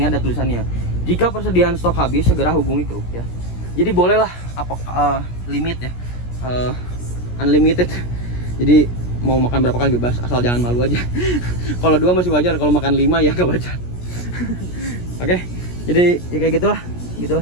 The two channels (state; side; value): late; right; 17 ms